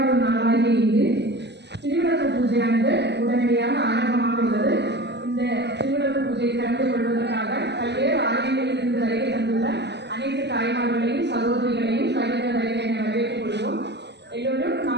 நாளாகிய இங்கு திருவிளக்கு பூஜையானது உடனடியாக ஆரம்பமாக உள்ளது. இந்த திருவிளக்கு பூஜையை கலந்து கொள்வதற்காக பல்வேறு ஆலயங்களிலிருந்து வருகை தந்துள்ள அனைத்து தாய்மார்களையும் சகோதரிகளையும் கடித வருகை என வரவேற்றுக் கொள்வோம். எல்லோரும்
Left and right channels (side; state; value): left; late; 0.50 ms